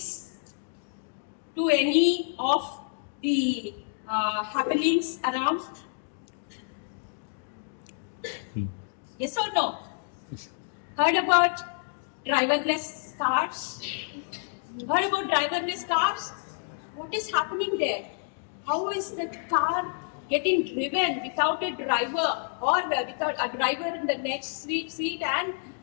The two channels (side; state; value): right; silent; digital silence